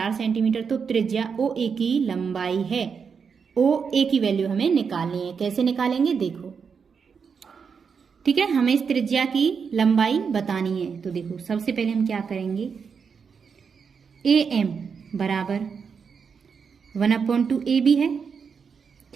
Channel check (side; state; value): left; quieter; 6.1 dB